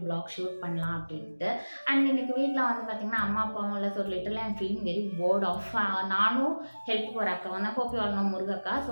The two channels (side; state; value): both; inverted; correlation -1.00